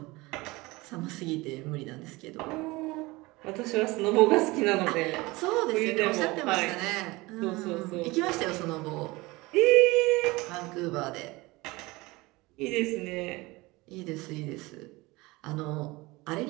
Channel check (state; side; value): quieter; left; 22.2 dB